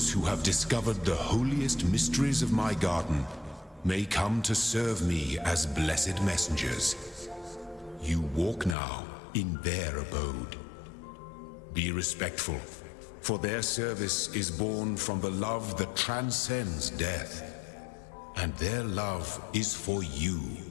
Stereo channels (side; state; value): right; drops out; at 8.8 s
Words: who have discovered the holiest mysteries of my garden may come to serve me as blessed messengers. You walk now in their abode. Be respectful, for their service is born from the love that transcends death, and their love is for you